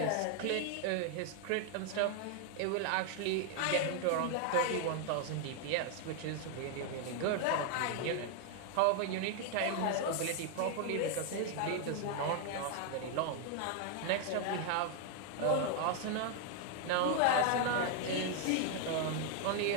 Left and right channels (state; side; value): different; both; correlation 0.00